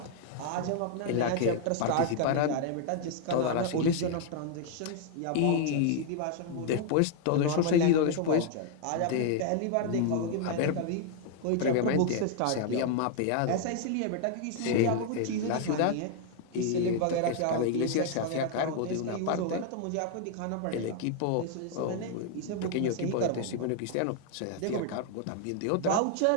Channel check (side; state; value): both; different; correlation 0.00